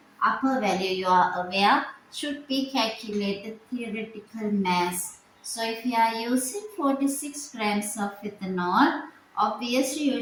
Upper value you are aware should be calculated theoretical mass. So if you are using 46 grams of ethanol, obviously you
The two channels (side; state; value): both; identical; correlation 1.00